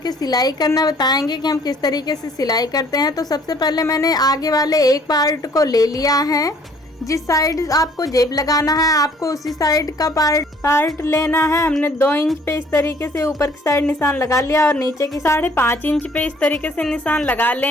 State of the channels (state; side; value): normal; both; correlation 0.58